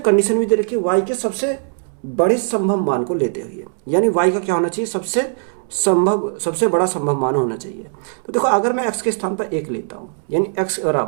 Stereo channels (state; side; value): silent; left; 66 dB below the other